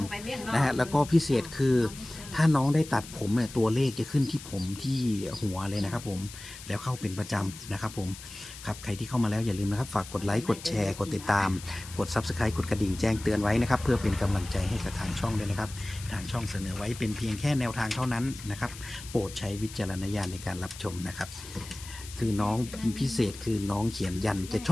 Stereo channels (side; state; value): left; noise; hiss, 14 dB below the sound